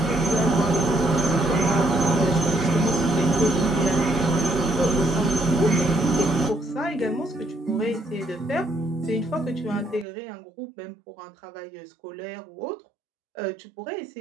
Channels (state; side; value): drops out; left; at 10.1 s